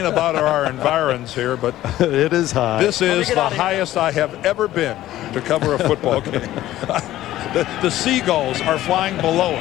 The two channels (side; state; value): right; quieter; 14.4 dB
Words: about our environs here, but it is high. This is the highest I have ever been to cover a football game. The seagulls are flying below